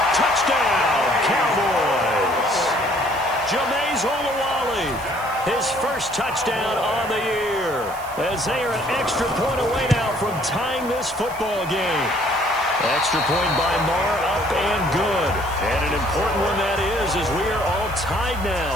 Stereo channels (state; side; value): noise; right; hiss, 18 dB below the sound